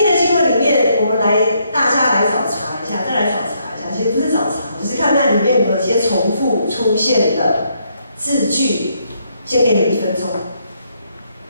的经文里面，我们大家来找茬一下，再来找茬一下。其实不是找茬，只是看看里面有没有一些重复出现的字句。先给你1分钟，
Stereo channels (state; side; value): inverted; both; correlation -0.74